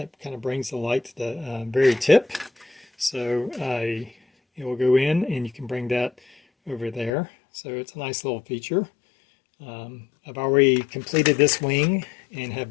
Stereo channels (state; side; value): drops out; right; at 7.1 s